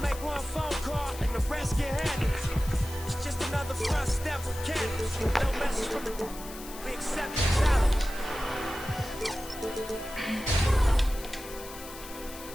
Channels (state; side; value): noise; left; hiss, 14 dB below the sound